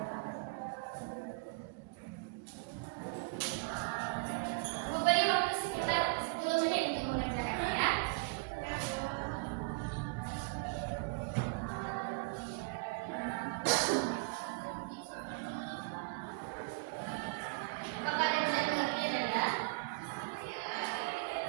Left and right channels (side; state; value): left; quieter; 30.5 dB